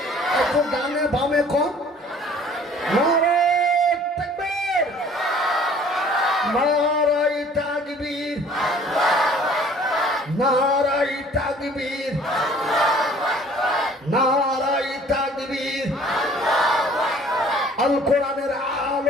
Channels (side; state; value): both; normal; correlation 0.52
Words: একটু ডানে বামে কোন। নারে তাকবীর, নারায়ে তাকবীর, নারায়ে তাকবীর, নারায়ে তাকবীর। আল কোরআনের